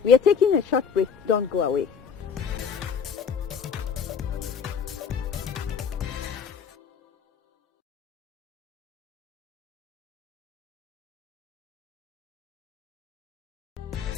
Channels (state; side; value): quieter; right; 6.6 dB